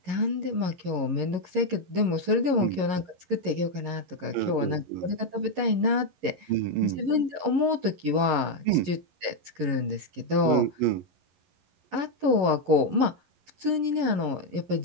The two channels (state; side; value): late; left; 11 ms